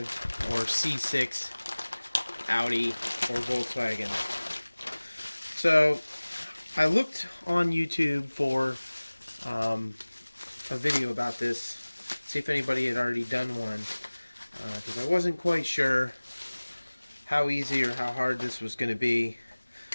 or C6 Audi or Volkswagen. So I looked on YouTube for a video about this, see if anybody had already done one, because I wasn't quite sure how easy or how hard this was going to be,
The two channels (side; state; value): both; inverted; correlation -1.00